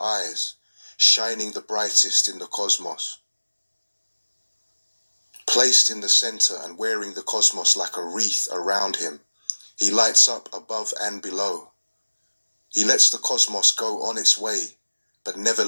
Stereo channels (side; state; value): both; inverted; correlation -1.00